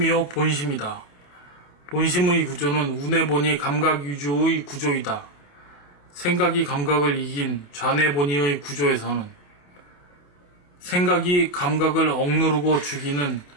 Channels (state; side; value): late; right; 28 ms